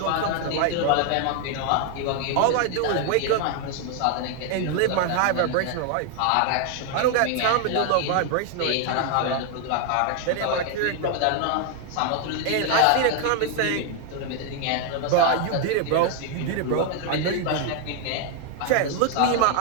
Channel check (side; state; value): both; different; correlation 0.00